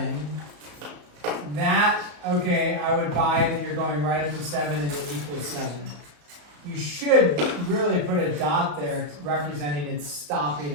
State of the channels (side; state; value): left; late; 34 ms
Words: that, okay, I would buy that you're going right up to 7 and it equals 7. You should really put a dot there representing it's stopping